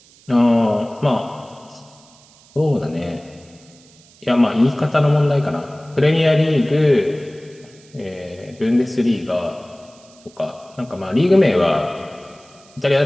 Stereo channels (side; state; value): right; noise; hiss, 27 dB below the sound